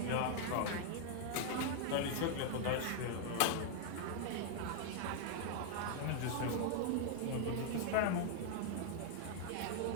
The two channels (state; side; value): different; both; correlation 0.00